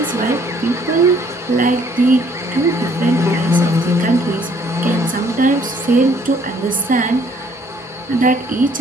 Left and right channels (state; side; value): normal; both; correlation 0.61